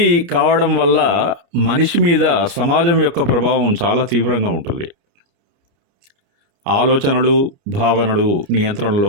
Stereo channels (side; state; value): left; late; 29 ms